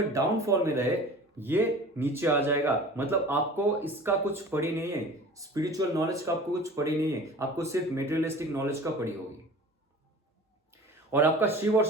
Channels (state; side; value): normal; both; correlation 0.41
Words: डाउनफॉल में रहे, ये नीचे आ जाएगा। मतलब आपको इसका कुछ पड़ी नहीं है, स्पिरिचुअल नॉलेज का आपको कुछ पड़ी नहीं है, आपको सिर्फ मेटेरियलिस्टिक नॉलेज का पड़ी होगी। और आपका शिव और